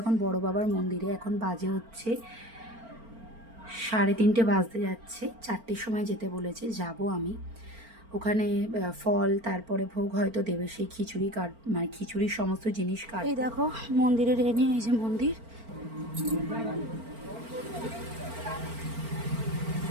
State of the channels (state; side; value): late; left; 4.4 ms